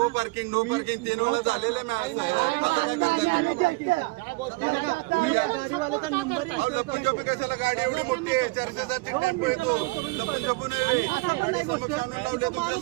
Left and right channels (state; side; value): quieter; left; 25.3 dB